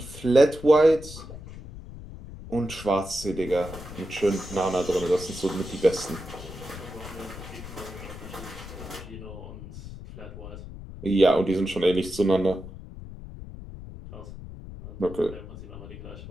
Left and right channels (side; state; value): left; noise; rumble, 13 dB below the sound